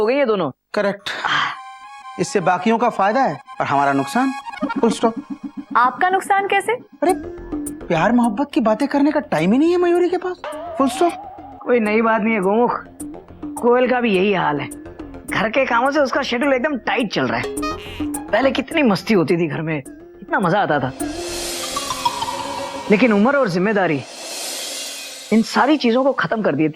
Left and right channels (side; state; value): both; identical; correlation 1.00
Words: गई है दोनों। करेक्ट। इससे बाकियों का फायदा है और हमारा नुकसान। Full stop. आपका नुकसान कैसे? अरे प्यार मोहब्बत की बातें करने का टाइम ही नहीं है मयूरी के पास। Full stop. कोई नई बात नहीं है गोमुख, कोयल का भी यही हाल है। घर के कामों से उसका शेड्यूल एकदम टाइट चल रहा है। पहले कितनी मस्ती होती थी घर में, कितना मजा आता था, लेकिन उम्र और जिम्मेदारी इन सारी चीजों को खत्म कर